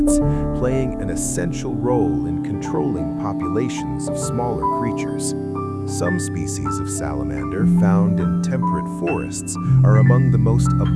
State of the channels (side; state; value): both; identical; correlation 1.00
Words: playing an essential role in controlling populations of smaller creatures. Some species of salamander found in temperate forests are among the most